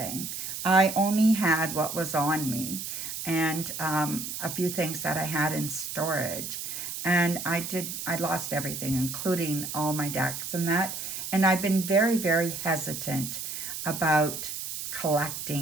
I only had what was on me and a few things that I had in storage. And I lost everything, including all my decks and that. And I've been very, very hesitant about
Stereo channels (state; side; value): noise; right; hiss, 6 dB below the sound